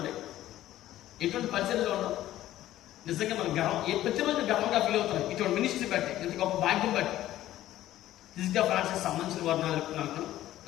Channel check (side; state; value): right; quieter; 14.0 dB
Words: ఎటువంటి పరిస్థితిలో ఉన్నాం? నిజంగా మనం ప్రతిరోజు గర్వంగా ఫీల్ అవుతాం ఇటువంటి మినిస్ట్రీ బట్టి, ఇంత గొప్ప భాగ్యం బట్టి. ఫిజికల్ ఫ్రాన్సిస్ సంబంధించిన వారు